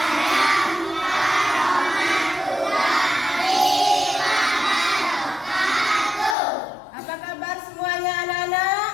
warahmatullahi wabarakatuh. Apa kabar semuanya anak-anak?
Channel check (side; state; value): right; drops out; at 6.4 s